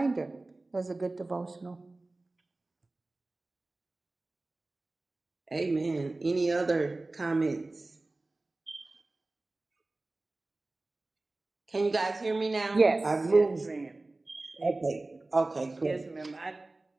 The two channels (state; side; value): quieter; left; 3.0 dB